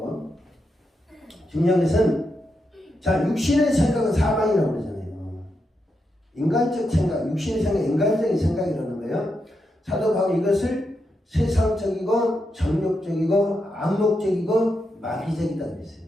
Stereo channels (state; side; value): normal; both; correlation 0.84